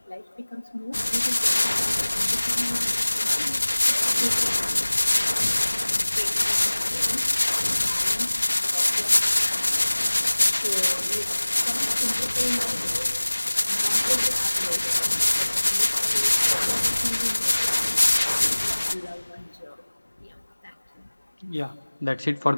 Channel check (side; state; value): both; inverted; correlation -1.00